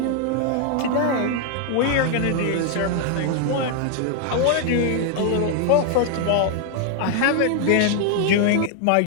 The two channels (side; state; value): both; different; correlation 0.00